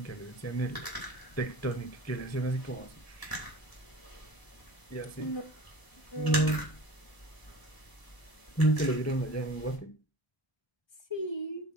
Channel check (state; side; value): late; right; 1.0 ms